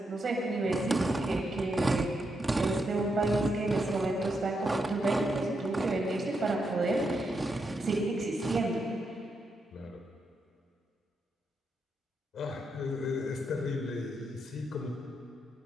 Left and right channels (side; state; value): both; normal; correlation 0.82